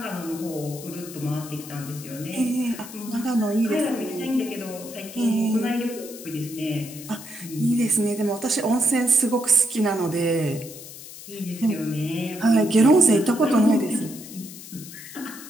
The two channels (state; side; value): noise; left; hiss, 14 dB below the sound